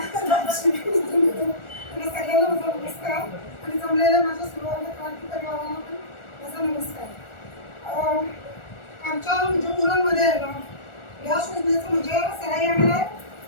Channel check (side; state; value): right; late; 1.4 ms